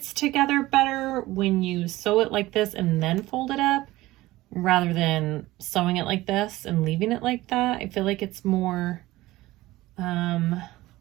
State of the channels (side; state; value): left; quieter; 17.9 dB